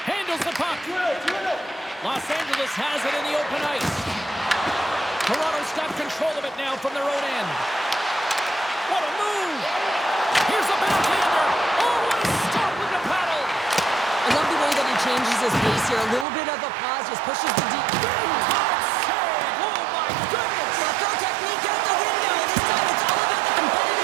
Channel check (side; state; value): left; drops out; at 16.2 s